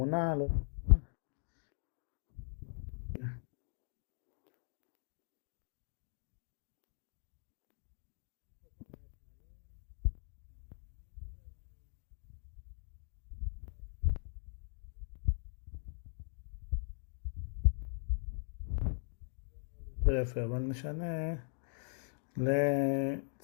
לא יודע מה. יש פה כל מיני סמלים. נגיד, לא יודע אם אני... אולי נשנה לשמש כזאת. שמש כזאת. לא, זה נראה לי יותר יפה, אבל נשנה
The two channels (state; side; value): silent; right; 51 dB below the other